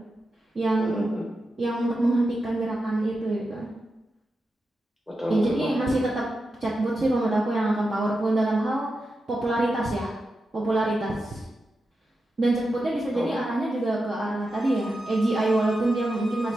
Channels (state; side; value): normal; both; correlation 0.89